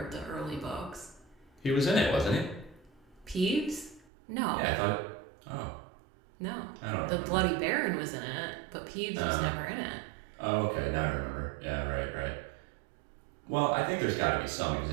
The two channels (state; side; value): drops out; left; at 4.0 s